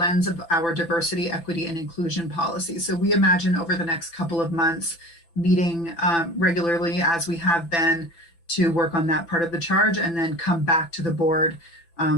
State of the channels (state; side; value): late; right; 5.9 ms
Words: of our diversity, equity, and inclusion policy. So we imagine over the next couple of months meeting regularly, as we have been, to work on that part of the charge, and then come back to the board